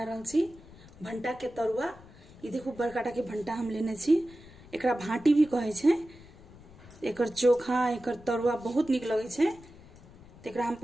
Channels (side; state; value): left; noise; rumble, 21 dB below the sound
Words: रहल छी भंटा के तरुआ। ये देखो बड़काटा के भंटा हम लेने छी, एकरा भाटी भी कहे छे। एकर चोखा एकर तरुआ बहुत निक लगे छे। तो एकरा हम